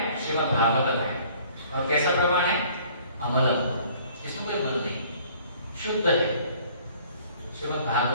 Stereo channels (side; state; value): both; inverted; correlation -0.55